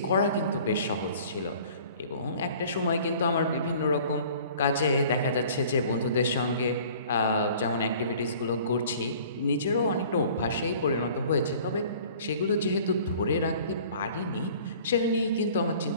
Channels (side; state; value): both; inverted; correlation -0.50